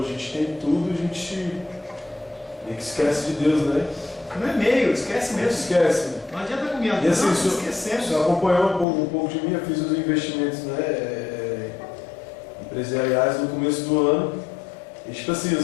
a gente tem tudo, a gente meio que esquece de Deus, né? Não é meio, esquece mesmo. Esquece. Não adianta comer a E assim, esquecemos. o senhor acompanhou um pouco de mim, eu fiz os investimentos, né, empresariais no começo do ano. E tipo assim,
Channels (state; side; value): drops out; right; at 8.8 s